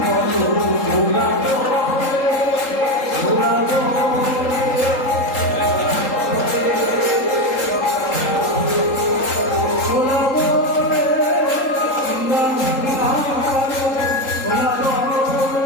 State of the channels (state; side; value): late; right; 3.8 ms